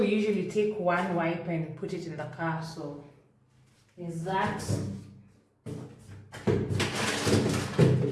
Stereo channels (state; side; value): identical; both; correlation 1.00